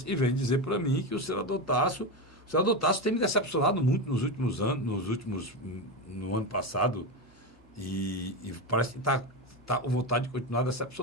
que vêm dizer para mim que o senador Tasso tem me decepcionado muito nos últimos anos, no ano passado, e parece que está com vontade de continuar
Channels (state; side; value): normal; both; correlation 0.15